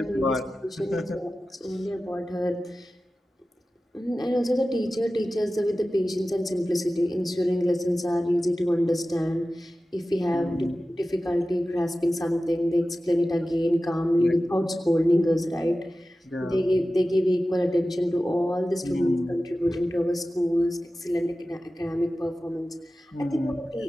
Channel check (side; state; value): both; normal; correlation 0.95